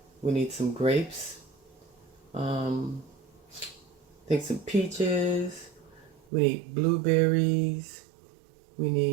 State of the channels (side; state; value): left; drops out; at 6.2 s